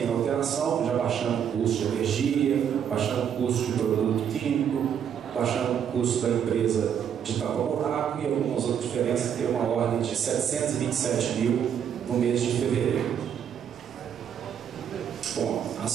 alteração, já baixando o custo de energia, baixando o custo de produto químico, baixando o custo da empresa de tapa-buraco e algumas outras diferenças, que tem uma ordem de R$ 727 mil no mês de fevereiro. Bom,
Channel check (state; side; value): quieter; left; 8.5 dB